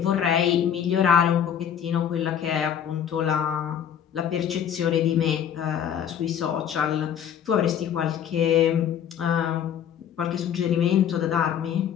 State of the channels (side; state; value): right; quieter; 8.9 dB